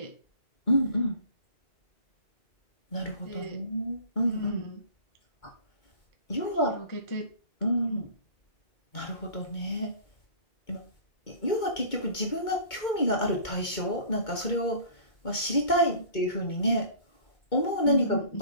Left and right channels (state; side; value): late; right; 2.2 ms